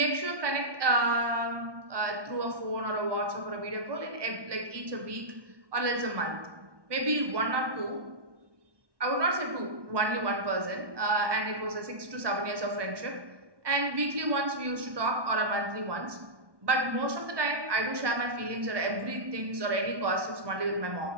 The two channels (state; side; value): late; left; 1.2 ms